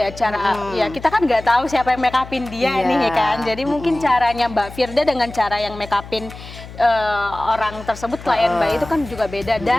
cara ya kita kan nggak tahu siapa yang make upin dia Iya. nih ya kan. Jadi mungkin caranya Mbak Firda dengan cara yang make upin orang tersebut klien Mbak itu kan juga beda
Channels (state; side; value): noise; left; hum, 15 dB below the sound